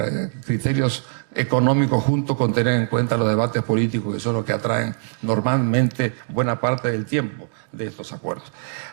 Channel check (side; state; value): left; silent; 64 dB below the other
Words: criterios económicos junto con tener en cuenta los debates políticos, que son los que atraen normalmente buena parte del tiempo de estos acuerdos.